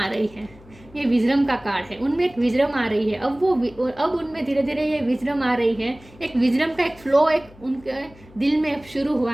रही है, ये विजडम का कार्ड है, उनमें एक विजडम आ रही है। अब उनमें धीरे धीरे ये विजडम आ रही है, एक विजडम का एक फ्लो एक उनके दिल में शुरू हुआ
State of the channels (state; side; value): noise; left; hum, 23 dB below the sound